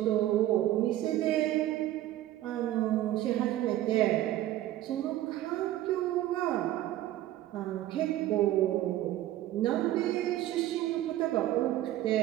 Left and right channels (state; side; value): quieter; left; 14.1 dB